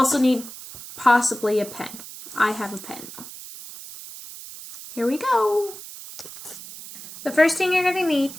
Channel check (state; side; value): noise; right; hiss, 14 dB below the sound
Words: need possibly a pen. I have a pen though. Here we go. The first thing you're going to need